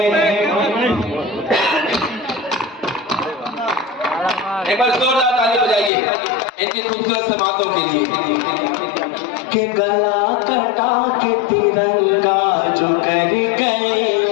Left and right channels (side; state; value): right; drops out; at 5.9 s